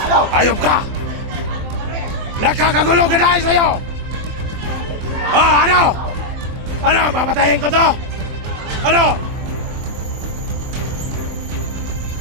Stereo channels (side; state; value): left; late; 24 ms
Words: Ayop ka! Nagkakagulo ka dahil sa'yo! Ah, ano? Ano? Papatayin ko to? Ano?